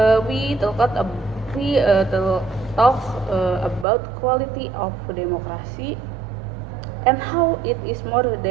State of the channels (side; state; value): left; drops out; at 3.9 s